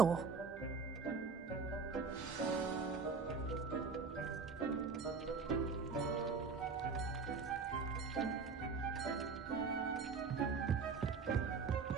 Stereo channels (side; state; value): left; quieter; 4.9 dB